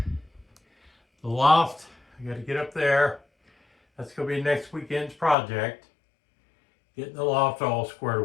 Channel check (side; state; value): right; drops out; at 5.4 s